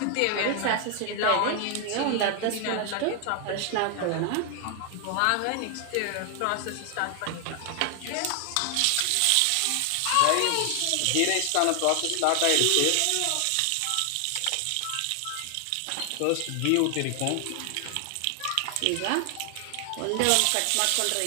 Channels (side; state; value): both; different; correlation 0.00